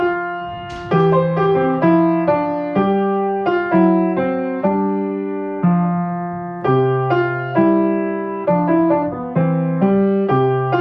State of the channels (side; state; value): both; identical; correlation 1.00